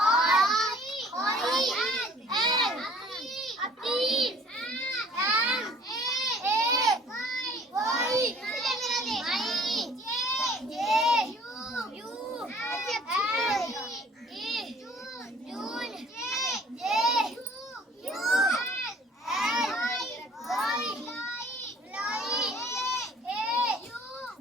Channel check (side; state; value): both; normal; correlation 0.54